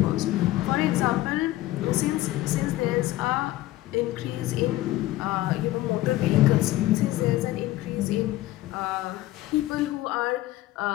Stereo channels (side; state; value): right; quieter; 16.3 dB